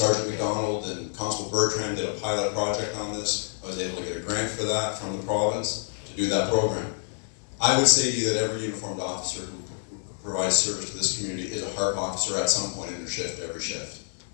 McDonald and Constable Bertrand did a pilot project on this. I was able to get a grant for that from the province to do that program. I would say to you that every uniformed officer who provides service to this community is a HARP officer at some point in their shift, every shift.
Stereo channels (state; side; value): silent; right; 60 dB below the other